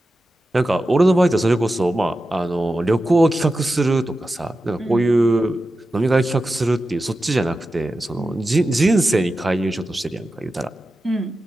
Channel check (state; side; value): normal; both; correlation 0.92